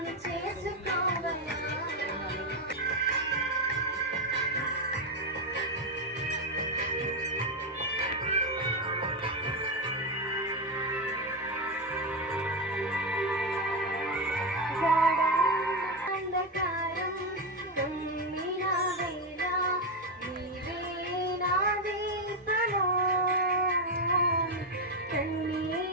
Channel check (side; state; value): both; normal; correlation 0.09